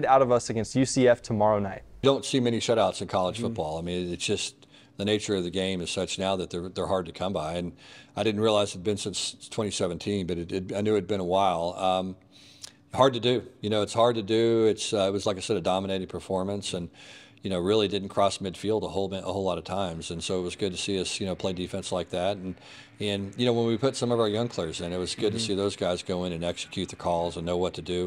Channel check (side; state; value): both; identical; correlation 1.00